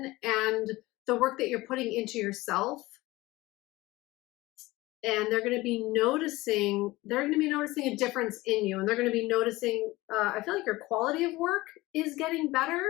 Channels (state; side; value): quieter; right; 19.6 dB